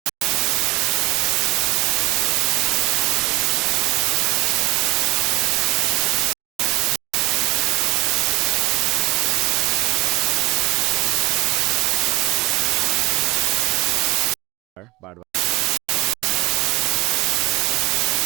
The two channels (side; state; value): left; quieter; 22.3 dB